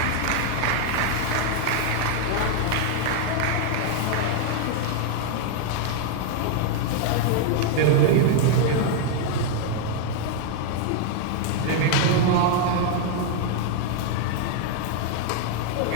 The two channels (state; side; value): different; both; correlation 0.00